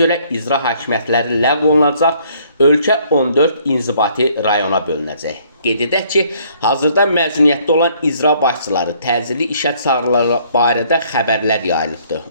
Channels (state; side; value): inverted; both; correlation -0.63